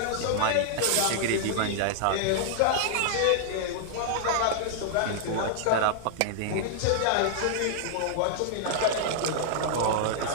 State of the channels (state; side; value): different; both; correlation -0.01